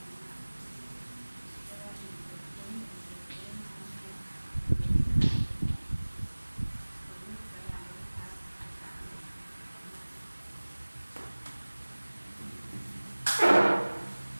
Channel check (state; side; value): inverted; both; correlation -1.00